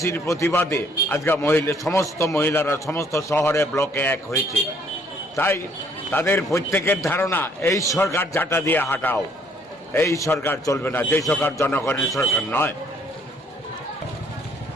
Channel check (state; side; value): normal; both; correlation 0.63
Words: প্রতিবাদে আজকে সমস্ত মহিলারা সমস্ত শহরে ব্লকে এক হয়েছে। তাই তাদের প্রত্যেকের ধারণা এই সরকার ঝাঁটা দিয়ে হাঁটাও, এই সরকার চলবে না, যে সরকার জনগণের সরকার নয়।